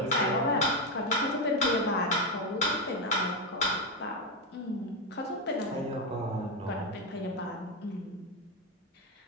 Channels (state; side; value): normal; both; correlation 0.08